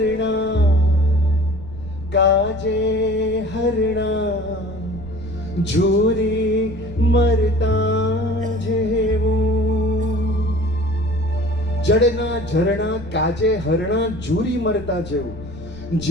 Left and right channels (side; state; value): left; noise; rumble, 15 dB below the sound